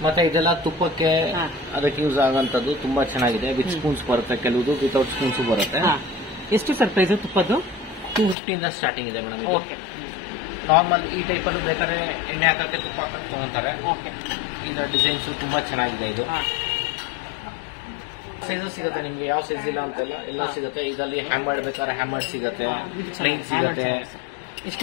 ಮತ್ತೆ ಇದೆಲ್ಲ ತುಪ್ಪಕ್ಕೆ ಅದಕ್ಕೆ ಯೂಸ್ ಆಗೋಂಥದ್ದು ತುಂಬಾ ಚೆನ್ನಾಗಿದೆ. ವಿತ್ ಸ್ಪೂನ್ಸ್ ಬರುತ್ತೆ, ಕೆಲವುದು ವಿತೌಟ್ ಸ್ಪೂನ್ಸ್ ಬರುತ್ತೆ. ಎಷ್ಟು ಸರ್ ಪ್ರೈಸ್ ತುಪ್ಪದ್ದು? 250 ಇಂದ ಸ್ಟಾರ್ಟಿಂಗ್ ಇದೆ ಮೇಡಮ್. ಇದು ನಾರ್ಮಲ್ ಈ ಟೈಪ್ ಅಲ್ಲೂ ಬೇಕಾದ್ರೆ ಎಣ್ಣೆ ಹಾಕಕ್ಕೆ ತುಪ್ಪ ಹಾಕಕ್ಕೆ ತಗೊಂತಾರೆ. ಇದರ ಡಿಸೈನ್ಸ್ ತುಂಬಾ ಚೆನ್ನಾಗಿದೆ. ಇದು ಸೈಜಸ್ ಸಿಗುತ್ತೆ ನಿಮ್ಗೆ, ಯಾವ ಸೈಜ್ ಇಲ್ಲ ಅಂತಲ್ಲ, ಎಲ್ಲ ಸಿಗುತ್ತೆ. ಇದರಲ್ಲಿ ಹ್ಯಾಮರ್ಡ್ ಬೇಕಾದ್ರೆ ಹ್ಯಾಮರ್ಡ್ ಸಿಗುತ್ತೆ, ಪ್ಲೈನ್ ಸಿಗುತ್ತೆ.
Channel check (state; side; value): drops out; right; at 8.3 s